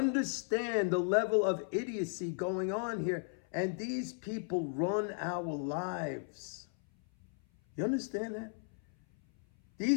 the level of idiocy going on here? And these people run our lives. You understand that?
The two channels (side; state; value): right; silent; 54 dB below the other